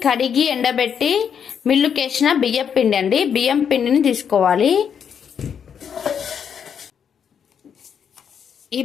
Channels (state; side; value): quieter; right; 7.7 dB